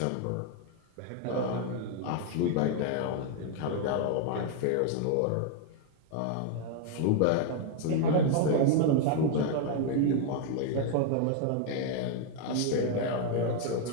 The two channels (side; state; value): both; different; correlation 0.00